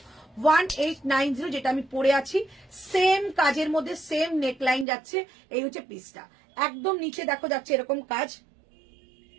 1890 যেটা আমি পরে আছি, সেম কাজের মধ্যে সেম নেকলাইন যাচ্ছে। এই হচ্ছে পিসটা, একদম নিচে দেখো যাচ্ছে এরকম কাজ।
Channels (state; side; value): drops out; left; at 4.9 s